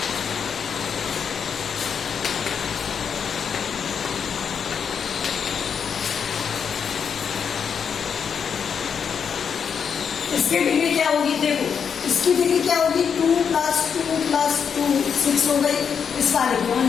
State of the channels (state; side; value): quieter; right; 6.9 dB